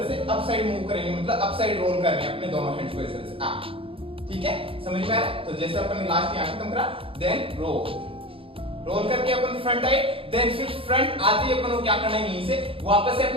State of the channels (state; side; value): late; left; 0.27 ms